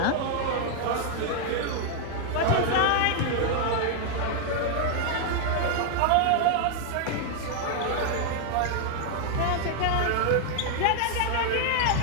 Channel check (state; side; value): different; both; correlation 0.00